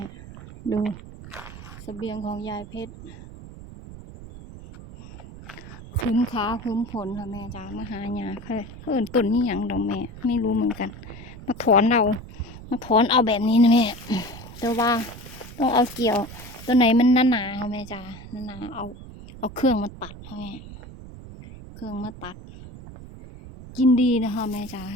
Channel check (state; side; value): noise; right; rumble, 15 dB below the sound